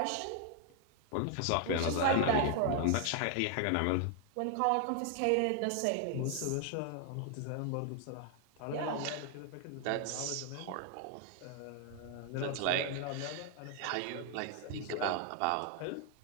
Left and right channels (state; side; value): different; both; correlation 0.00